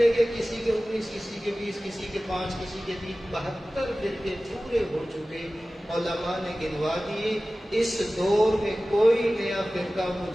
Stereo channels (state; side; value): normal; both; correlation 0.96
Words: گئے، کسی کے 19، کسی کے 20، کسی کے 5، کسی کے 3، 72 فرقے پورے ہو چکے۔ علماء نے گنوا دیے، اس دور میں کوئی نیا فرقہ